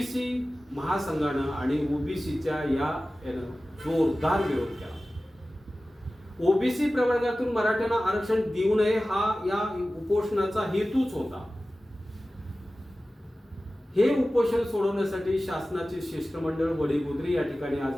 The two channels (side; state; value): both; normal; correlation 0.96